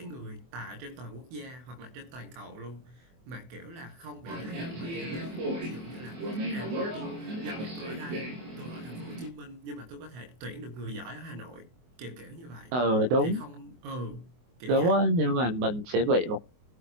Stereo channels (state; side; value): late; left; 24 ms